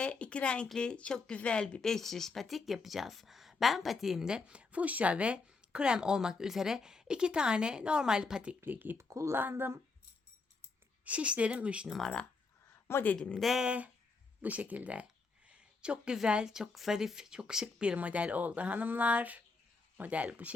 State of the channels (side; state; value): right; quieter; 4.2 dB